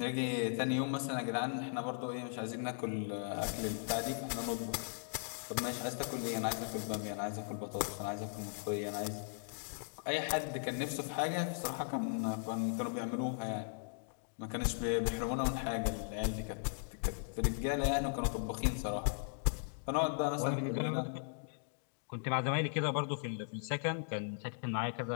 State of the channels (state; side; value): silent; right; digital silence